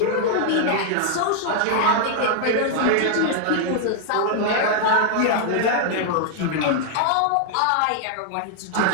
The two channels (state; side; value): different; both; correlation 0.00